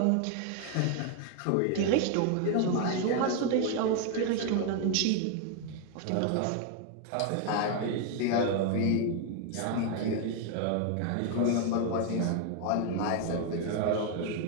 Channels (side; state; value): both; different; correlation 0.00